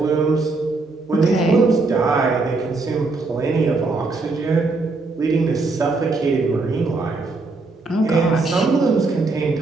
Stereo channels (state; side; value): quieter; left; 3.6 dB